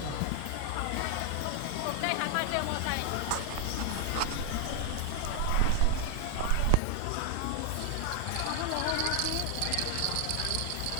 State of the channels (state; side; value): different; both; correlation 0.00